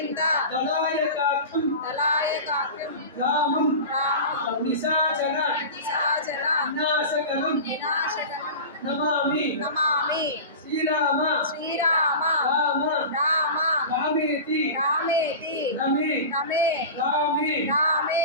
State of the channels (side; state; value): both; inverted; correlation -0.31